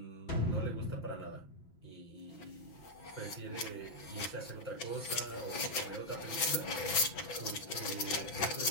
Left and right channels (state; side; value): late; right; 6.6 ms